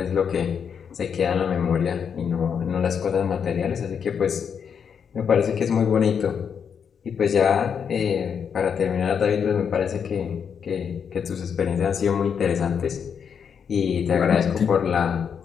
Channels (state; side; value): quieter; right; 7.1 dB